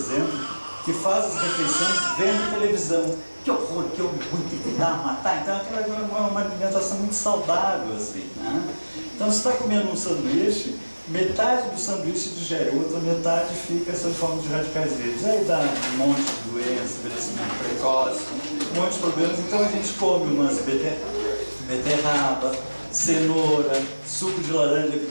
que faz as refeições vendo televisão. Que horror, que orgulho, que dá a matar. Então aquilo é uma alimentação muito saudável, assim, né? Então você está comendo um sanduíche, metade do sanduíche digere, outra metade fica sob forma de radicais livres. Aí dá um monte de doença, envelhecimento precoce, um monte de problemas. Então a gente come umas beterraba, cenoura, suco de laranja,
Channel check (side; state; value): both; inverted; correlation -1.00